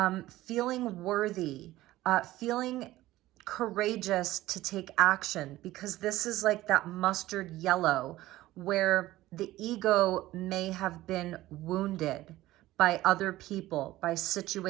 feeling worthy, feeling courageous to take action, because this is like that mustard yellow where the ego may have been wounded by other people, by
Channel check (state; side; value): quieter; left; 16.4 dB